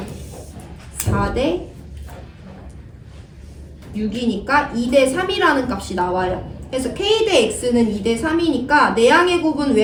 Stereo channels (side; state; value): both; identical; correlation 1.00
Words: 4대 6이니까 2대3이라는 값이 나와요. 그래서 k 대 x는 2대 3이니까 내양의 곱은